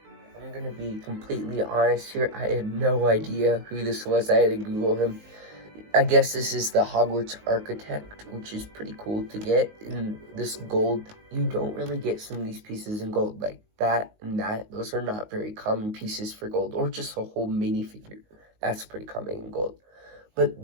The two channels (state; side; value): late; left; 19 ms